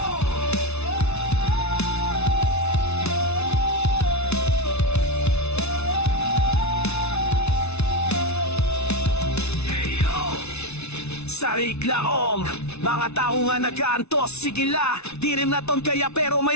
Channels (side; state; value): right; late; 0.81 ms